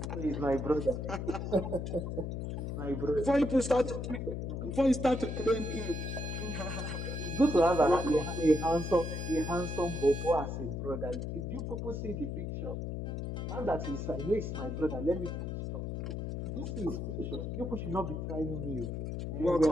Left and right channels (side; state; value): left; noise; hum, 4 dB below the sound